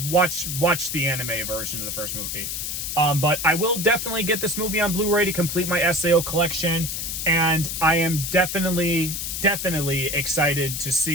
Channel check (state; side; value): noise; left; hiss, 4 dB below the sound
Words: the anime version of the first movie. But I will definitely get this movie on Blu-ray to complete my SAO collection, and I am definitely excited to